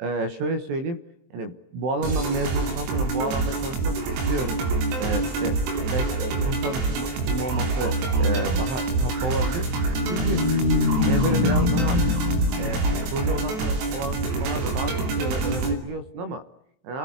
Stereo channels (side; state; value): left; late; 23 ms